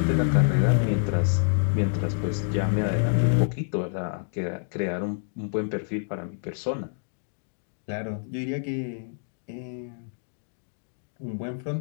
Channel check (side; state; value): right; silent; digital silence